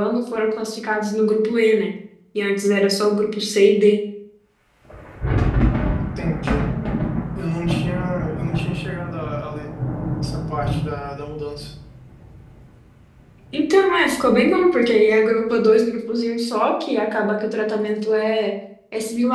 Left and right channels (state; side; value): identical; both; correlation 1.00